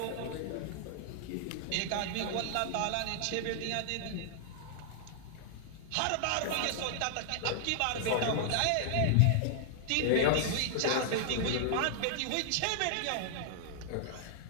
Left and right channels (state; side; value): different; both; correlation -0.01